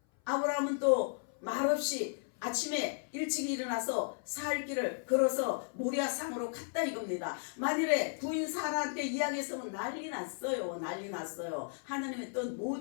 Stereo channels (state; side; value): silent; right; 55 dB below the other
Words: 아브라함은 또 말없이 아침에 일찍 일어나서 사흘 길을 걸어서 모리아 산으로 갔다 이겁니다. 만일에 부인 사라한테 이야기했으면 난리 났어요. 하나님의 뜻